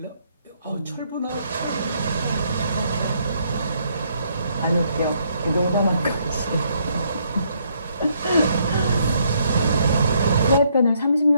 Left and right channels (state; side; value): inverted; both; correlation -0.71